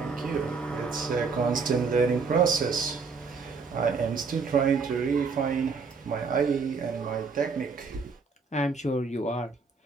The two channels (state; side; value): quieter; left; 4.9 dB